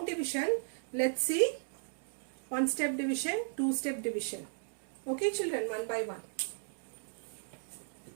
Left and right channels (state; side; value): silent; left; 54 dB below the other